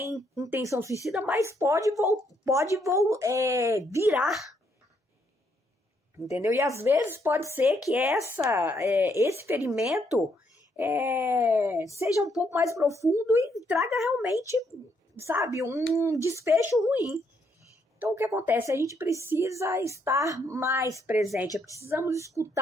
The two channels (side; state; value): both; normal; correlation 0.73